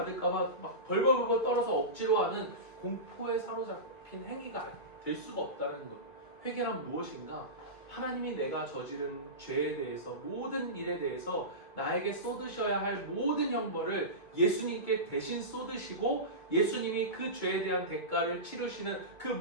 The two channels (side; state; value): right; late; 1.9 ms